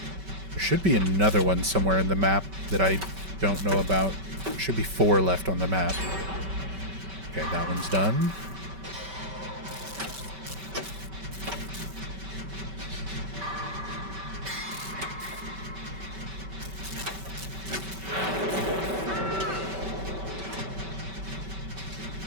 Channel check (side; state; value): left; late; 5.2 ms